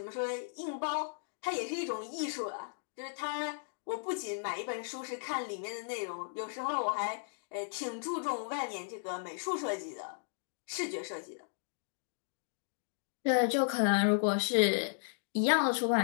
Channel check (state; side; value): silent; right; digital silence